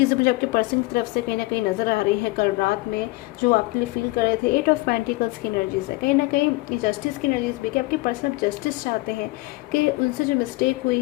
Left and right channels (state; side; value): quieter; right; 22.0 dB